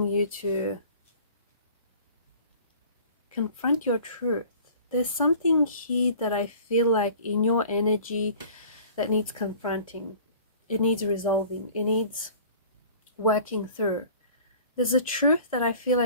you to confront your truth. There's something here that I feel like in your energy that needs confronting. It needs resolving. It needs working through. There's a truth that I feel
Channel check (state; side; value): inverted; both; correlation -0.47